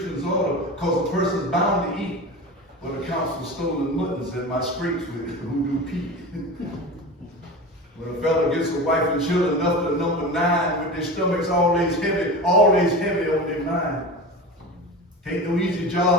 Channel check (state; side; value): normal; both; correlation 0.30